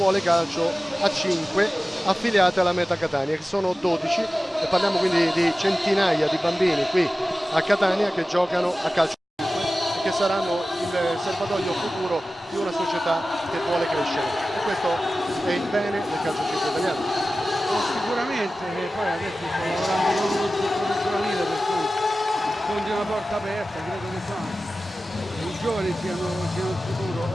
calcio a 5 affiliate alla Meta Catania, che sono 12, e parliamo quindi di centinaia di bambini qui a Catania che giocano a calcio e che saranno il serbatoio futuro di una società che vuole crescere, e questo è il bene del calcio italiano. Sicuramente, poi adesso sto lavorando con uno struttore giovanile, per cui sfondi una porta aperta, credo che i giovani siano il futuro.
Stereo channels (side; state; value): both; normal; correlation 0.95